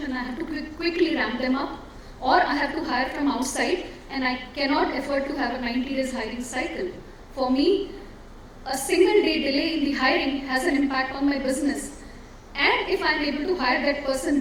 and I have to quickly ramp them up, or I have to hire from outside and I cannot afford to have a 90 days hiring cycle. For me, a single day delay in the hiring has an impact on my business. And if I'm able to hire that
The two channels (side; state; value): both; identical; correlation 1.00